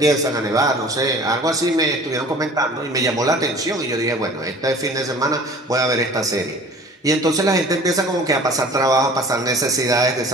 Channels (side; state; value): both; normal; correlation 0.46